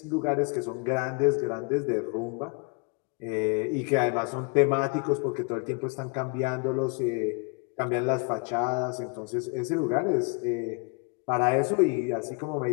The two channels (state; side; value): quieter; right; 34.0 dB